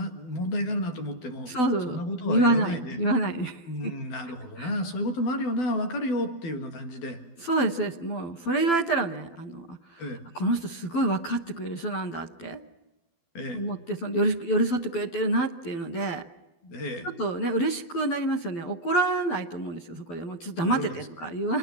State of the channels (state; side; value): late; right; 12 ms